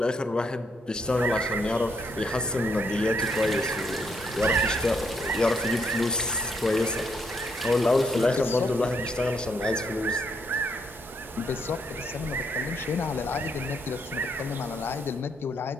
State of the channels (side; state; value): both; normal; correlation 0.75